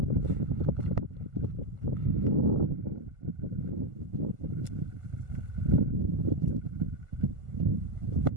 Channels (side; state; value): left; late; 1.4 ms